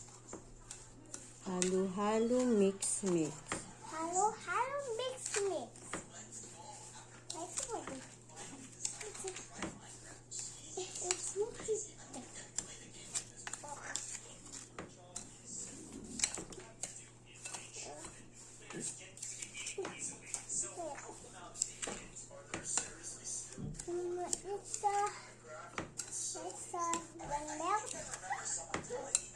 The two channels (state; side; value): identical; both; correlation 1.00